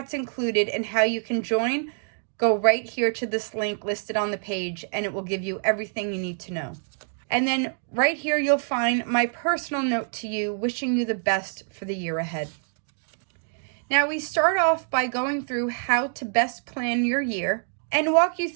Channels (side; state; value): left; silent; digital silence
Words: included and how you can join, go right here to this link listed on the page, and it will give you everything you need to know. And then right here, you'll find my personal note to you, wishing you the best for the year ahead. Now, we start off by going through how to best plan your year and walk you